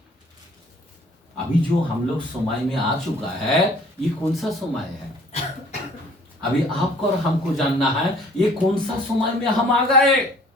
अभी जो हम लोग समय में आ चुका है, ये कौन सा समय है? अभी आपको और हमको जानना है ये कौन सा समय में हम आ गए।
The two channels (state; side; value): normal; both; correlation 0.54